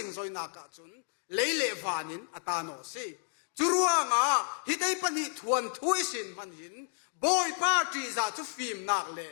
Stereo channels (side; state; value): right; silent; digital silence